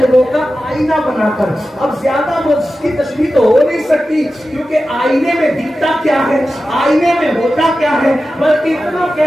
کا آئینہ بنا کر۔ اب زیادہ اس کی تشریح تو ہو نہیں سکتی کیونکہ آئینے میں دکھتا کیا ہے، آئینے میں ہوتا کیا ہے، بلکہ اتنا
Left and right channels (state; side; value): normal; both; correlation 0.93